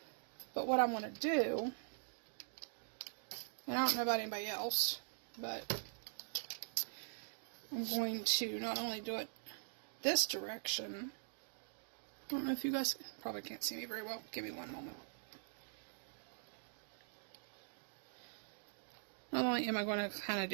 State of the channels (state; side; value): silent; left; digital silence